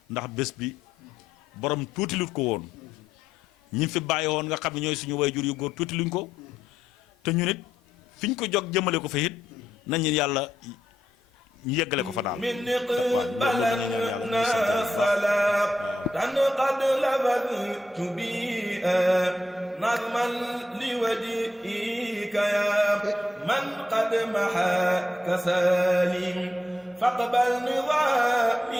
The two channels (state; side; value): normal; both; correlation 0.80